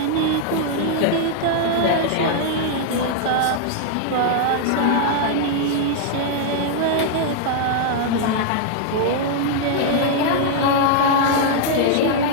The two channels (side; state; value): both; different; correlation -0.01